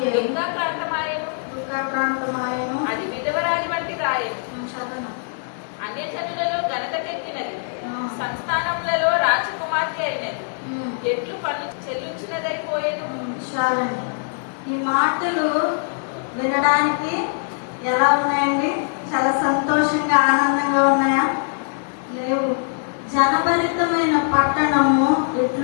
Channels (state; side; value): silent; right; 64 dB below the other